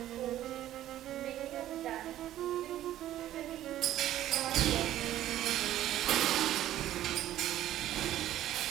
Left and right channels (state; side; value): quieter; left; 13.0 dB